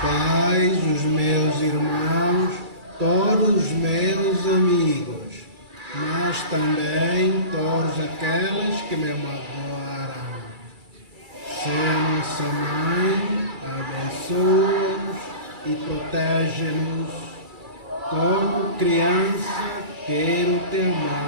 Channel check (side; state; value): left; late; 2.3 ms